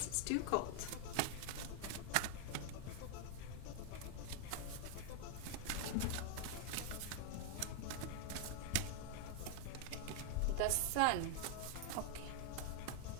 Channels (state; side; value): different; both; correlation 0.00